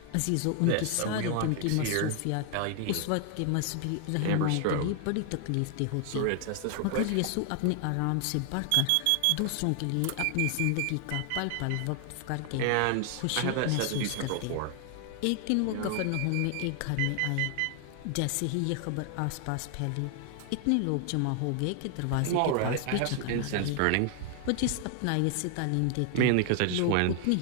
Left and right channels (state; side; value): different; both; correlation 0.00